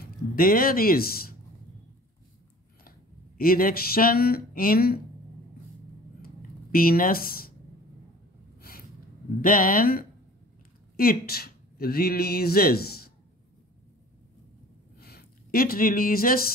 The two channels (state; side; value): normal; both; correlation 0.45